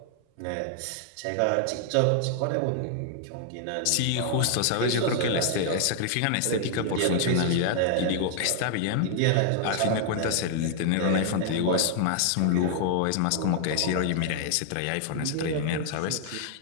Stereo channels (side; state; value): both; different; correlation 0.00